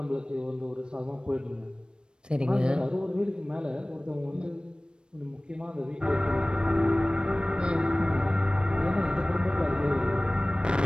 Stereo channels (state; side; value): late; left; 0.053 ms